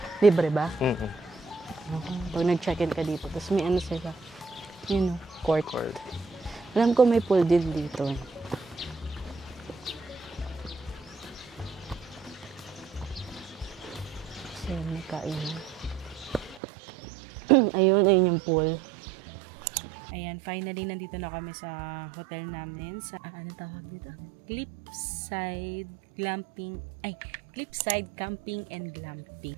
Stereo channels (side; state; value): left; drops out; at 16.6 s